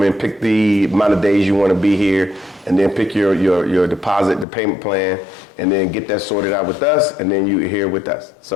Pick the amount of days you want to be here, and then pick your deposit, the payment plan, and then get that sorted out with us, and then you're here with us.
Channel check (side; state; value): right; drops out; at 4.5 s